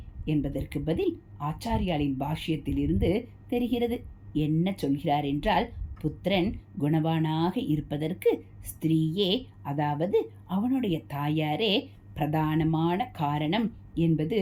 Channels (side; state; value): both; identical; correlation 1.00